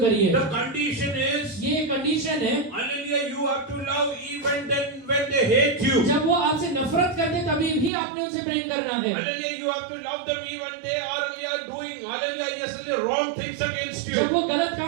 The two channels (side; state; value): left; drops out; at 7.9 s